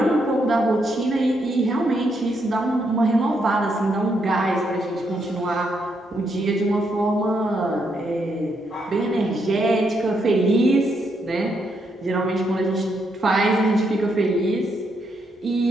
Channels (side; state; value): both; normal; correlation 0.78